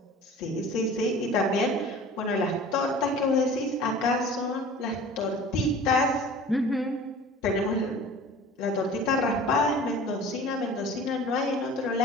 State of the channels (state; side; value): normal; both; correlation 0.43